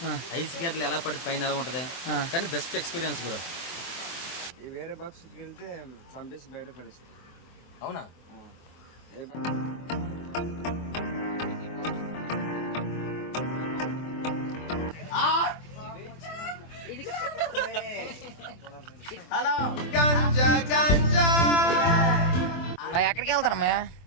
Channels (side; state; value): right; late; 24 ms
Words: ఐస్ గేట్లు ఎలా పడి పైన ఎలా ఉంటుంది కానీ బెస్ట్ ఎక్స్పీరియన్స్ గురా. వేరే బాక్స్కి వెళ్తే సండేస్ బయట పడేస్తుంది. అవునా? హలో ఎక్కడికి వెళ్తారమ్మా?